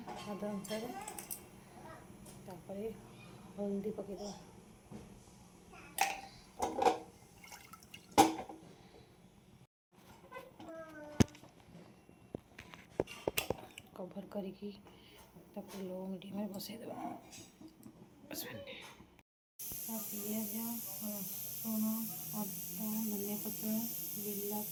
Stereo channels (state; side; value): identical; both; correlation 1.00